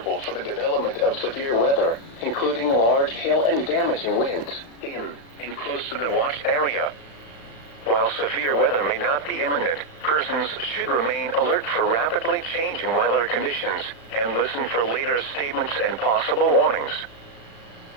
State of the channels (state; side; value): late; right; 35 ms